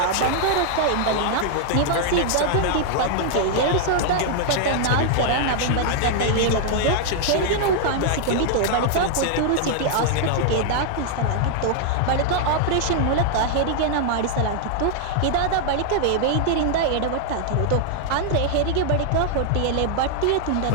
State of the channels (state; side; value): different; both; correlation -0.01